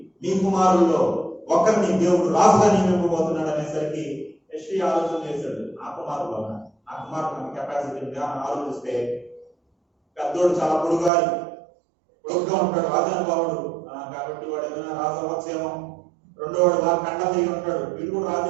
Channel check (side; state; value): left; drops out; at 11.1 s